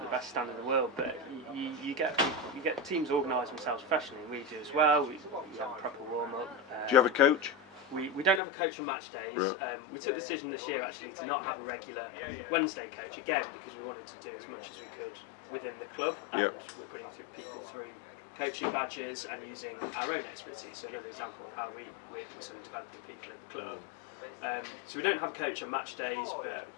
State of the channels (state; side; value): drops out; right; at 8.4 s